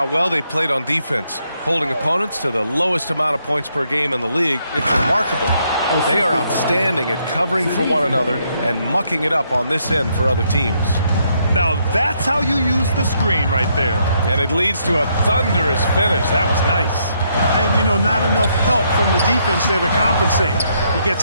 well they played on defense, holding opponents to the lowest amount of points per game in the league, it's remarkable. They are outstanding at covering for one another and mucking it up on this end for other teams. Now that's how you use the screen right there. And it leads to a thunderous finish. That was nice. And, you know, not enough help from the defense there to compensate. He gets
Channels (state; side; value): inverted; both; correlation -0.74